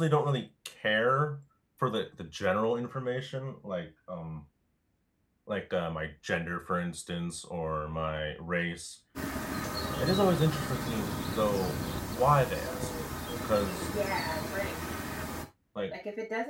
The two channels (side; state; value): both; identical; correlation 1.00